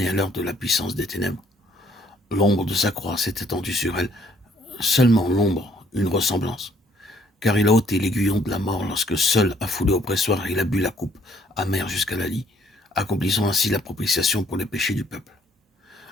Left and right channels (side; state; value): both; normal; correlation 0.64